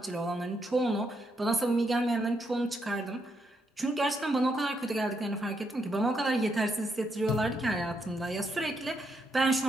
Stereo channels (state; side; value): normal; both; correlation 0.78